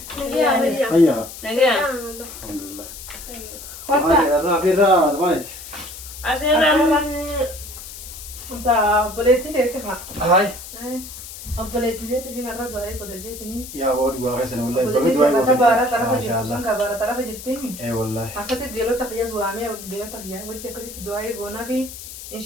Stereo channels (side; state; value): left; noise; hiss, 13 dB below the sound